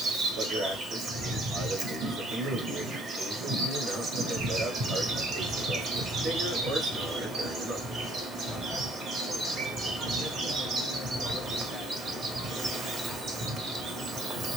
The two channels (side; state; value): both; normal; correlation 0.59